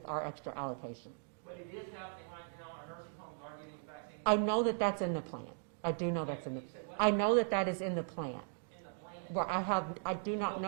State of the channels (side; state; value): left; silent; 52 dB below the other